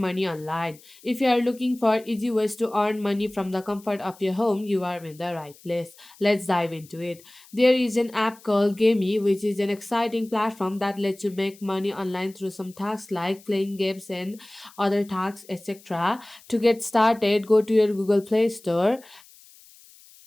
online. If you are looking for easy ways to earn money from the comfort of your home, you are in the right place. Let's dive into it. There is an app called Gamey, which is an exciting platform that lets you make money online through some tasks like playing games and other tasks, etc. To get started, go to your Google Play Store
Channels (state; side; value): noise; left; hiss, 24 dB below the sound